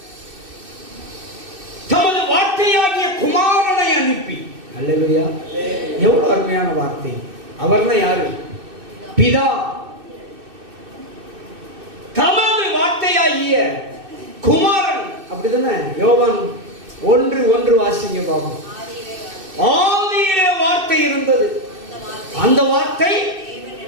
தமது வார்த்தையாகிய குமாரனை அனுப்பி. அல்லேலூயா. எவ்வளவு அருமையான வார்த்தை. அவர்னா யாரு? பிதா. தமது வார்த்தையாகிய குமாரன். அப்படிதானே? யோவான் 1:1 வாசிங்க பாபா. ஆதியிலே வார்த்தை இருந்தது, அந்த வார்த்தை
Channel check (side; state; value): left; late; 2.6 ms